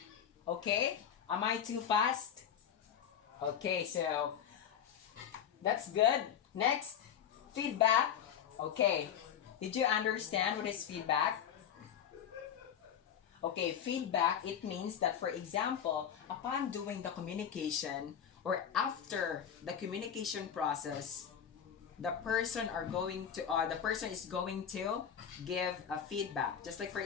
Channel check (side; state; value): right; quieter; 8.7 dB